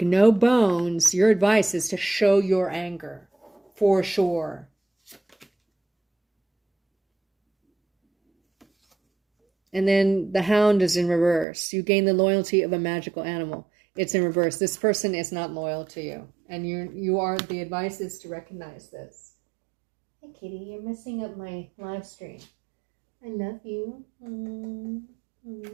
no bones. Your advice is to show your anger, for sure. And then the hound is in reverse. You gain the loyalty of a magical animal. It's in reverse. This person is not loyal to you. And the advice is to recognize this. Hey, kitty, you're messing up my live stream. I love you. Come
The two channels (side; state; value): left; drops out; at 11.5 s